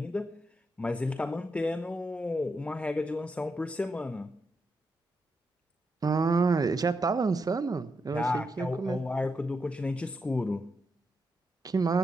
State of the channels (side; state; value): both; normal; correlation 0.84